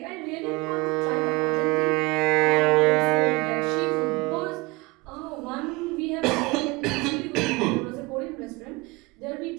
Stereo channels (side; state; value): left; quieter; 24.1 dB